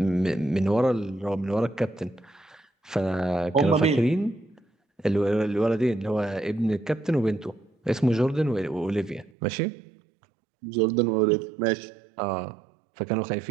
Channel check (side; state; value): left; drops out; at 9.3 s